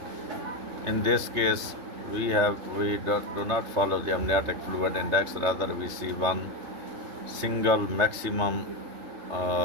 In this case, we do not follow the amniotic fluid index. Rather, we see one single maximum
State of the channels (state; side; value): late; left; 3.4 ms